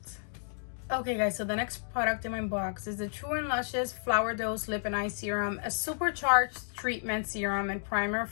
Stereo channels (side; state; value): right; silent; digital silence